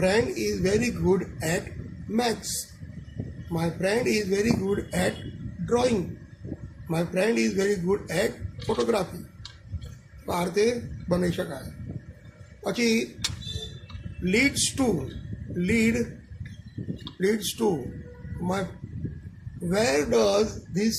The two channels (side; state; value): both; identical; correlation 1.00